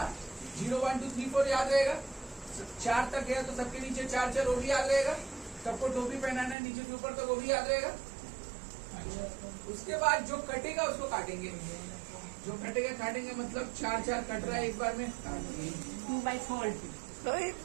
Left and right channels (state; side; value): drops out; left; at 6.6 s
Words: 0, 1, 2, 3, 4 याद रहेगा। 4 तक गया तो सबके नीचे 4 4, वो भी याद रहेगा। सबको टोपी पहनाना है नीचे से ऊपर तक, वो भी याद रहेगा। उसके बाद जो कटेगा उसको काटेंगे, जो कटेगा काटेंगे, मतलब 4 4 कट रहा है एक बार में, 2/4,